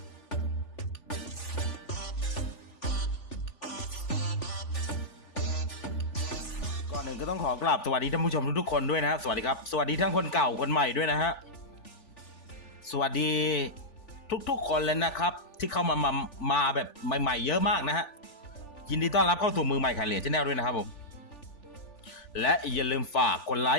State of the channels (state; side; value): late; right; 3.4 ms